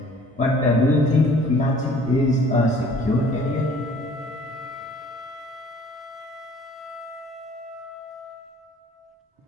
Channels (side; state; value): both; normal; correlation 0.53